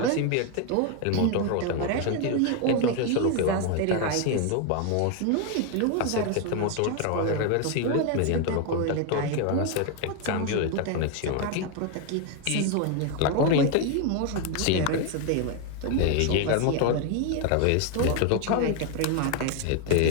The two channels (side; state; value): both; different; correlation 0.01